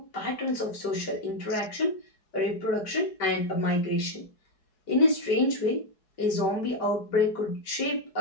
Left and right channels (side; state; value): right; late; 4.7 ms